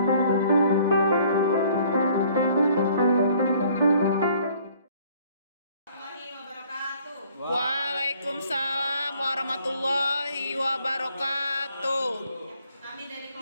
warahmatullahi wabarakatuh. Kami dari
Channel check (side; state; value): both; inverted; correlation -0.59